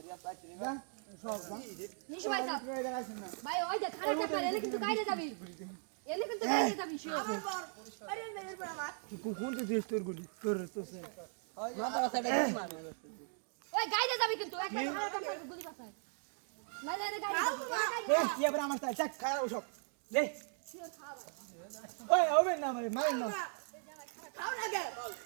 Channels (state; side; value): silent; left; 52 dB below the other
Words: রিয়া পাইছি যা সব নিশু ভাই সাহেব ভাই ওই যে খারাপ ব্যাপার এনে কিন্তু গাইতে যাবি এনে কিন্তু গাইতে যাবি শিওর কোন তো দিস তোর গুলি তোর তো সে মাথা মাথাটা কি মারবে ওই গাইতে যাবি কিন্তু একটা খারাপ ব্যাপার গুলি পাছায় না না গাইতে এ কি আবার আমার তাই চাক খারাপ সব লে শিওর খাওয়া ওই হবে না মারেন না খাও না গে